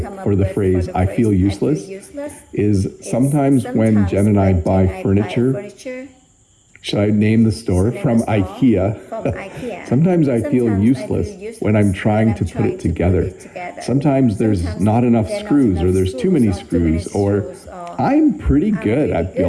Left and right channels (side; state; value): both; identical; correlation 1.00